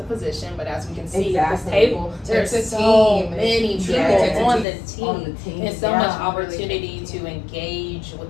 physician, but as we can see at this table, there's so many people on the team. There's so much opportunity to engage with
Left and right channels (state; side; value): drops out; right; at 4.7 s